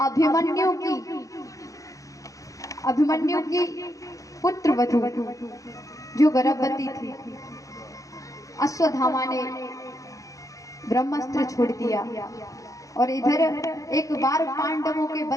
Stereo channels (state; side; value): late; right; 0.16 ms